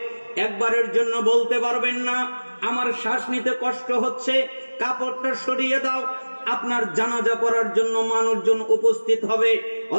একবারের জন্য বলতে পারবেন না আমার শ্বাস নিতে কষ্ট হচ্ছে কাপড়টা সরিয়ে দাও। আপনার জানাজা পড়ার জন্য মানুষজন উপস্থিত হবে,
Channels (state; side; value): inverted; both; correlation -1.00